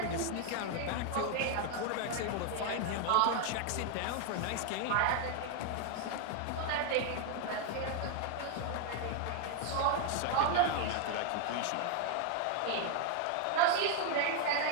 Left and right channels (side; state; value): both; different; correlation 0.01